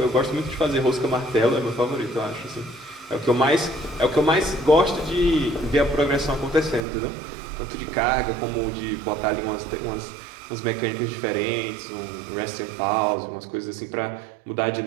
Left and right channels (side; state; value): left; drops out; at 6.8 s